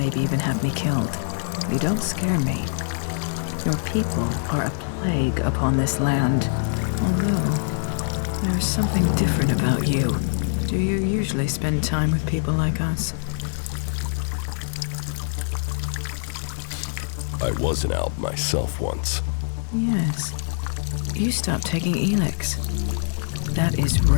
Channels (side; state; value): right; silent; digital silence